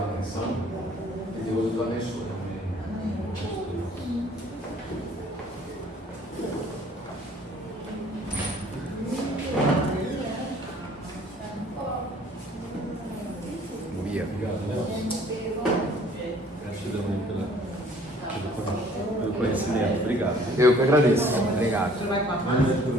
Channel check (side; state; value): both; normal; correlation 0.56